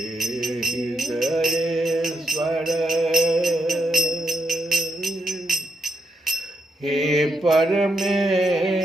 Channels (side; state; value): both; normal; correlation 0.80